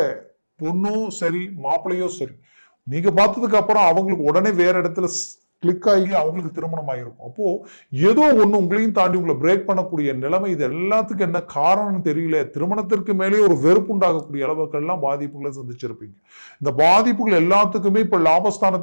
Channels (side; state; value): both; inverted; correlation -1.00